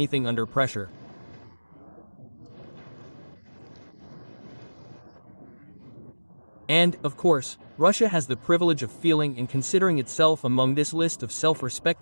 under pressure. And, of course, Russia has the privilege of feeling and considering itself among this list of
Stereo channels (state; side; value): inverted; both; correlation -1.00